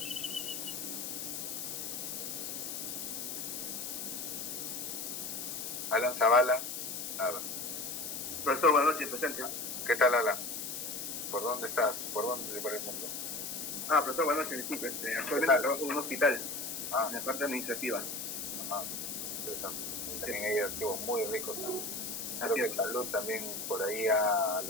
Alan Zavala. Nada. Profesor, buenas noches, presente. ¿Qué tal, Alan? ¿Por dónde estás? ¿Por dónde por el mundo? Profesor, buenas noches, disculpe. Actualmente trabajo en un hospital, en la parte administrativa. Interesante. También hay archivos muy ricos. Creo que Salud también por ahí ha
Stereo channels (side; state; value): left; noise; hiss, 5 dB below the sound